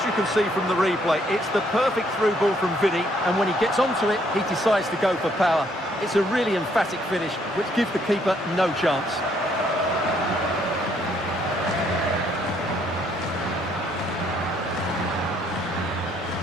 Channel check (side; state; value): both; normal; correlation 0.68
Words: you can see from the replay, it's the perfect through ball from Vinny, and when he gets onto it, he decides to go for power. It's a really emphatic finish, which gives the keeper no chance.